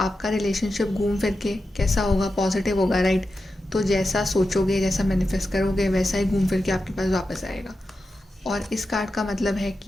रिलेशनशिप घूम फिर के कैसा होगा, पॉजिटिव होगा, राइट? तो जैसा सोचोगे, जैसा मैनिफेस्ट करोगे, वैसा ही घूम फिर के आपके पास वापस आएगा। और इस कार्ड का मतलब है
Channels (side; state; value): both; normal; correlation 0.90